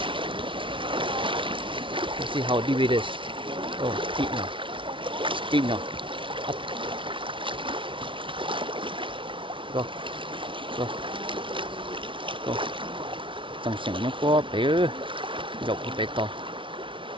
let's see how deep it is. Oh, deep now, up, go, trong sảnh nó có bé dọc bé to.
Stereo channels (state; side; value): late; left; 0.25 ms